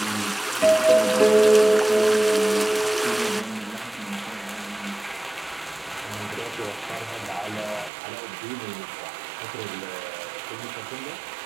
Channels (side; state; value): left; drops out; at 7.9 s